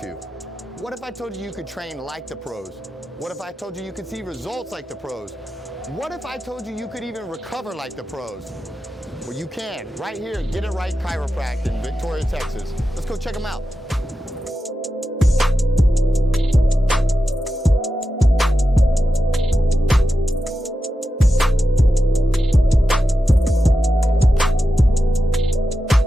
to? What if I told you you could train like the pros? What if I told you you could see results like the pros? What if I told you you could even recover like the pros? Well, you can, right here at Get It Right Chiropractic in Victoria, Texas. Let's go check them out.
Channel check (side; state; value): both; normal; correlation 0.91